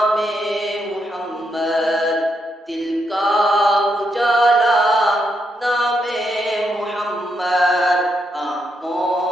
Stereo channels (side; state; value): both; normal; correlation 0.80